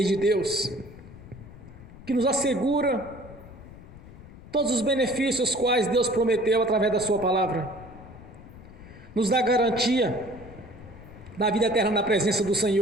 de Deus, que nos assegura todos os benefícios quais Deus prometeu através da sua palavra, nos dá garantia da vida eterna na presença do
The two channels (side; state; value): left; noise; rumble, 18 dB below the sound